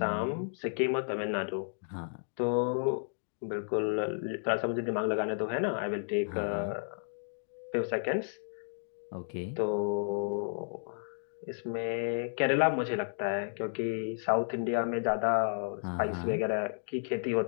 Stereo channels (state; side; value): silent; right; digital silence